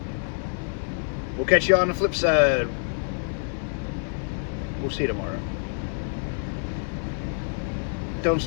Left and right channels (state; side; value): silent; right; 61 dB below the other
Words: We'll catch you on the flip side. We'll see you tomorrow. Don't